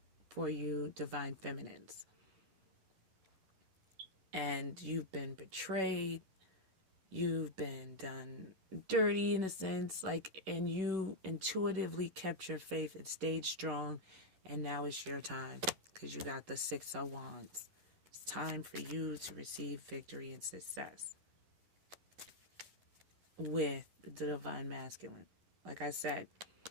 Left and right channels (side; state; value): left; late; 10 ms